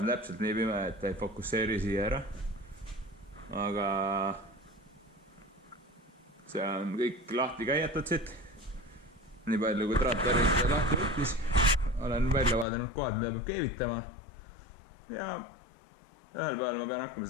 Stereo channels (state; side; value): drops out; right; at 12.7 s